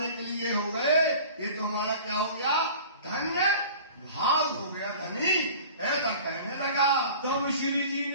के लिए हो गए, ये तो हमारा क्या हो गया? धन्य भाव हो गया धनी, ऐसा कहने लगा। तब श्री जी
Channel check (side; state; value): both; inverted; correlation -0.43